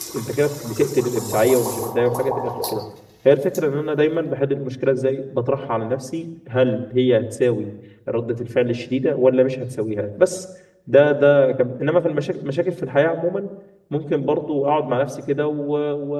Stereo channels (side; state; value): both; identical; correlation 1.00